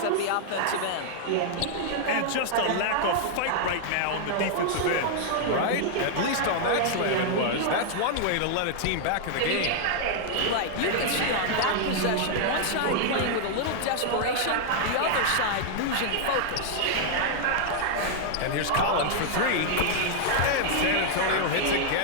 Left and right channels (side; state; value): both; different; correlation 0.00